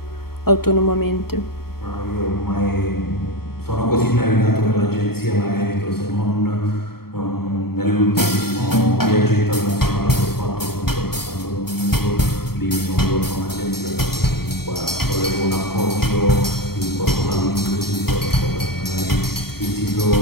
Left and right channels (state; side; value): late; right; 0.95 ms